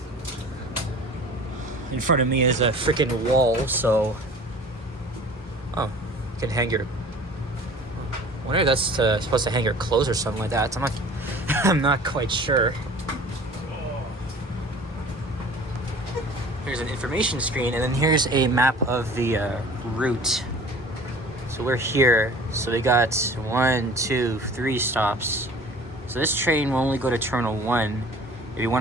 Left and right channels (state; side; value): normal; both; correlation 0.45